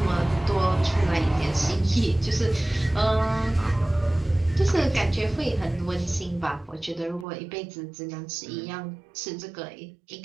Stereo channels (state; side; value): drops out; left; at 7.2 s